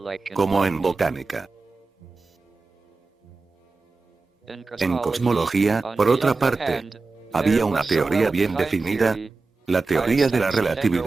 como en botánica. En cosmología, por otra parte, había una teoría bien definida, la teoría de la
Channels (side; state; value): left; quieter; 3.9 dB